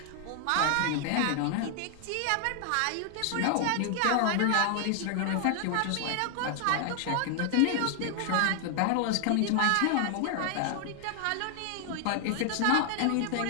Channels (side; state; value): both; different; correlation 0.00